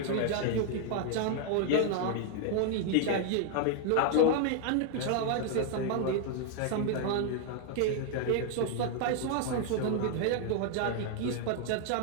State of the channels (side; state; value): both; different; correlation 0.00